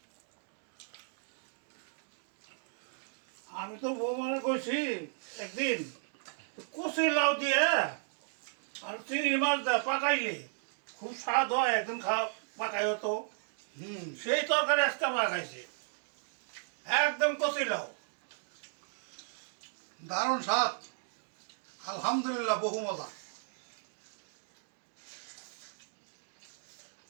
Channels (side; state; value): left; silent; digital silence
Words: আমি তো বউ মনে করছি একদিন কচি লাউ দিয়ে আর চিংড়ি মাছ দেয় পাকাইলে খুব স্বাদ হয়, একদিন পাকাই হতো। সেই তরকারি আজকে পাকাইছে, একদম কচি লাউ। দারুণ স্বাদ, আলহামদুলিল্লাহ, বহু মজা।